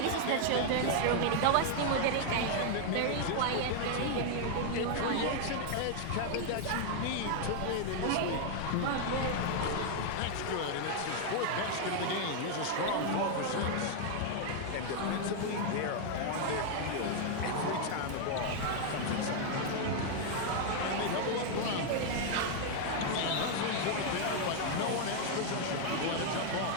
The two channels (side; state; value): both; different; correlation 0.00